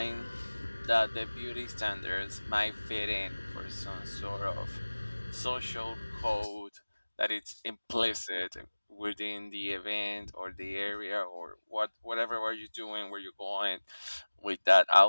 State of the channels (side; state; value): both; inverted; correlation -1.00